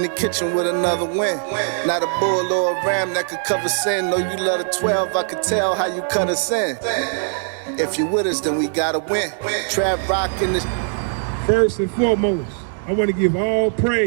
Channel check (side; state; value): left; silent; digital silence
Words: the kitchen with another win. Not a bull or a ram that could cover sin. No, you love the 12, I could tell how you cut us in. If you with us, then we gotta win. Trap rock in the... First and foremost, I want to give all